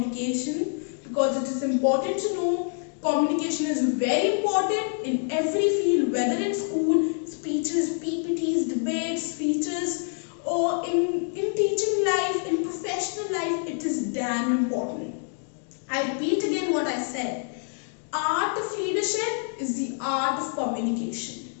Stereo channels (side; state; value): right; silent; 57 dB below the other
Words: because it is important to know communication is very important in every field, whether in school, speeches, PPTs, debates, speeches, or in teaching life, in professional life. It is damn important. I repeat again what I said. Art of leadership is the art of communication.